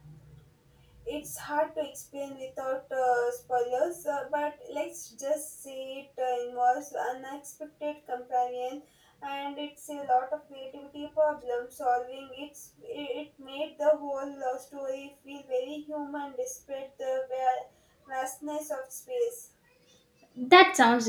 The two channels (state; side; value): identical; both; correlation 1.00